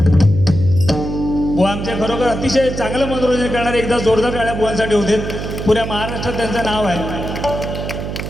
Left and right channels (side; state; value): right; noise; hum, 6 dB below the sound